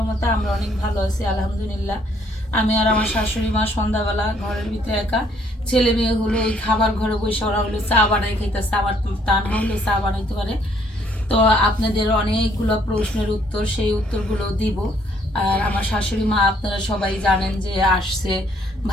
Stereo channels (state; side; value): normal; both; correlation 0.66